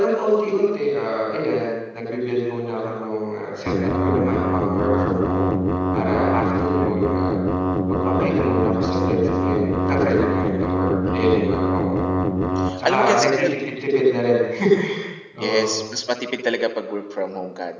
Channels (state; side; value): identical; both; correlation 1.00